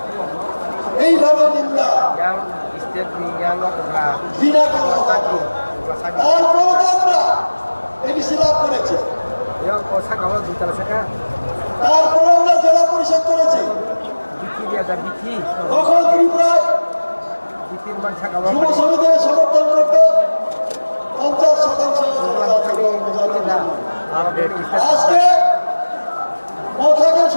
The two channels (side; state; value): both; inverted; correlation -1.00